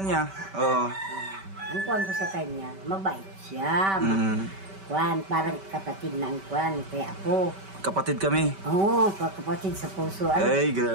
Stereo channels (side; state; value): left; late; 5.2 ms